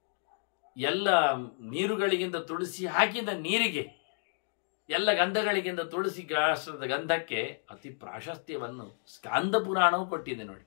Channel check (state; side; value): silent; right; 57 dB below the other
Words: ಎಲ್ಲ ನೀರುಗಳಿಗಿಂತ ತುಳಸಿ ಹಾಕಿದ ನೀರಿಗೆ, ಎಲ್ಲ ಗಂಧಗಳಿಗಿಂತ ತುಳಸಿ ಗಾಸ್ತ್ರದ ಗಂಧಕ್ಕೆ ಅತಿ ಪ್ರಾಶಸ್ತ್ಯವನ್ನು ಸ್ಕಾಂದ ಪುರಾಣವು ಕೊಟ್ಟಿದೆ ನೋಡಿ.